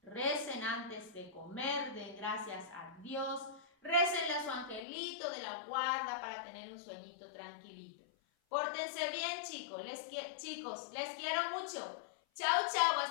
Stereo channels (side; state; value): right; drops out; at 4.9 s